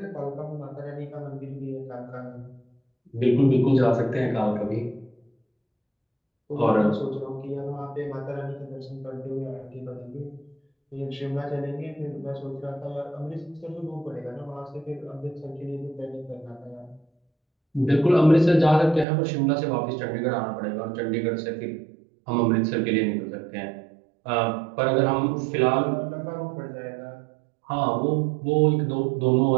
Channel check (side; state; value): left; drops out; at 19.1 s